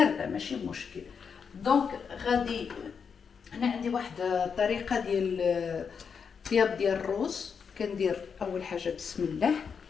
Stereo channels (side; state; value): right; quieter; 6.3 dB